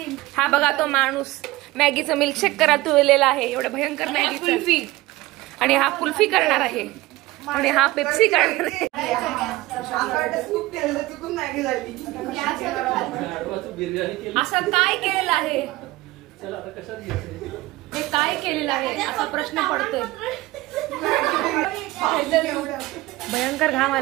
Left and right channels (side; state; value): left; quieter; 19.0 dB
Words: हा बघा तो माणूस मॅगीचं मिल्कशेक करत तुळलेला आहे. एवढं भयंकर मॅगी. आणि हा कुल्फी करणार आहे आणि हा पेप्सी करणार आहे. असं काय केलेलं आहे? हे काय केलेलं आहे असा प्रश्न पडतोय. भयंकर घाम